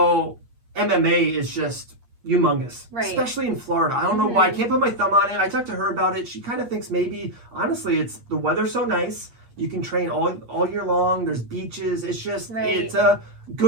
MMA is just humongous, right? Especially in Florida. I don't know why. I can't put my thumb on it. I talked to her about it. She kind of thinks maybe, honestly, it's the weather's so nice. You can train all year long. There's beaches. It's just it's a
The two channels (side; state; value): left; late; 8.5 ms